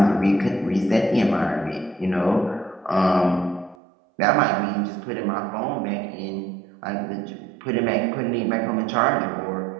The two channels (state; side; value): drops out; left; at 3.8 s